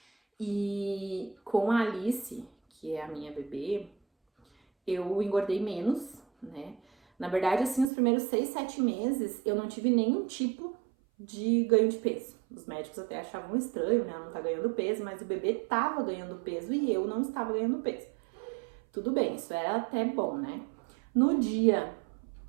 E com a Alice, que é a minha bebê, eu engordei menos, né? Na verdade, assim, os primeiros 6, 7 meses, eu não tive nenhum tipo de ganho de peso. Os médicos até achavam estranho, né? Ela não tá ganhando peso, mas o bebê tava ganhando peso e eu não estava ganhando peso. Tudo bem, isso era até bom, né? No dia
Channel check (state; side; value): drops out; left; at 7.9 s